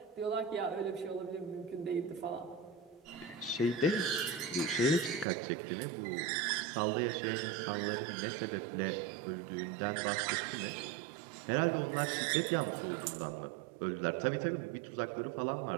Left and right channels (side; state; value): left; drops out; at 5.2 s